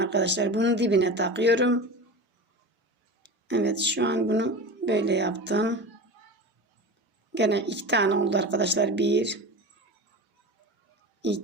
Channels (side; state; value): both; normal; correlation 0.30